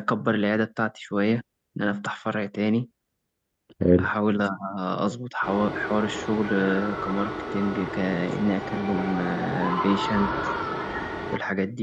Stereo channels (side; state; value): both; identical; correlation 1.00